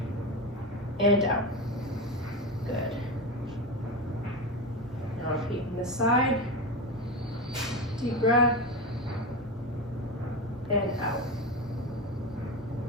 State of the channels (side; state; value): both; normal; correlation 0.20